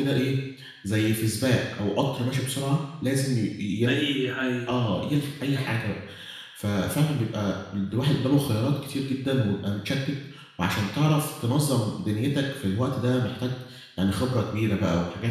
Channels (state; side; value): identical; both; correlation 1.00